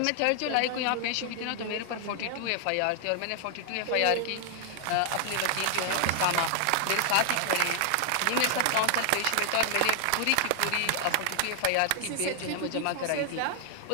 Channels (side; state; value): both; different; correlation 0.00